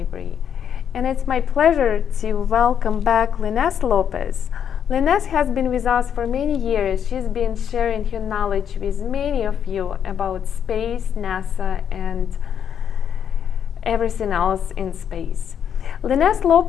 and it's my pleasure to welcome back Linés Lopez. Linés has been with us for many years. She's been sharing her knowledge with many of you about space, NASA, and everything else in space. Linés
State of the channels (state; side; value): quieter; right; 8.5 dB